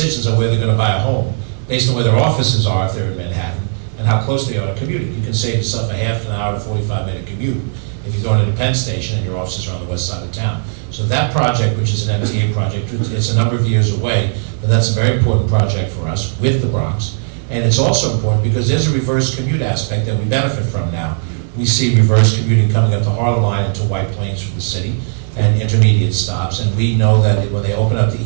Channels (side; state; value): left; silent; 62 dB below the other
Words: on where they're going to buy a home based on where their offices are if they're in Manhattan and how close they are to commuting. You can save yourself a half an hour to 45-minute commute if you're going to the Penn Station and your offices are on the west side of town. So that project, which is an MTA project, it's a number of years away, but that's a very important project for us with the Bronx. And it's also important because there's a reverse commute aspect that we benefit from now. We see reverse commuting coming up the Harlem line into White Plains from the city and intermediate stops, and we know that when they open up the